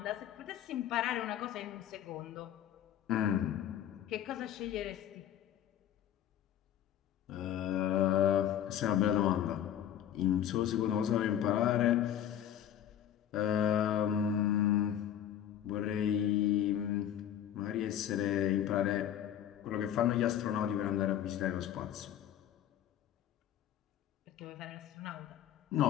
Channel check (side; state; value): right; quieter; 10.7 dB